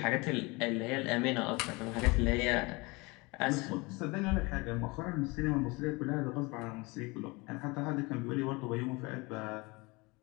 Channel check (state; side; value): quieter; right; 25.6 dB